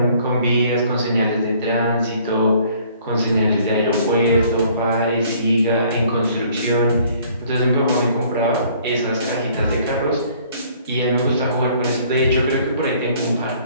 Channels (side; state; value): both; inverted; correlation -0.58